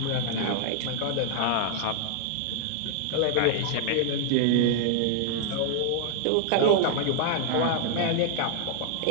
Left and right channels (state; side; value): different; both; correlation 0.00